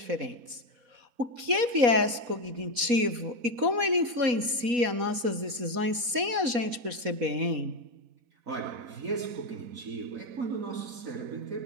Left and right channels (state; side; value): late; left; 4.1 ms